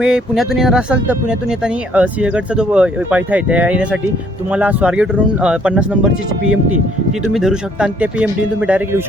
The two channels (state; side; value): normal; both; correlation 0.64